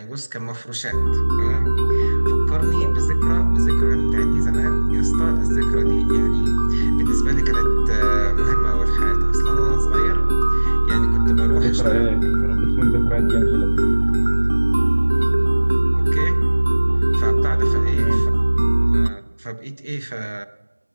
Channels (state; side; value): inverted; both; correlation -1.00